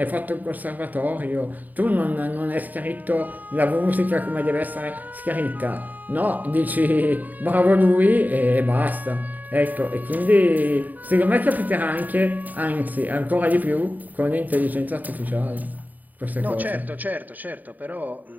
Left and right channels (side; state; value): left; late; 0.082 ms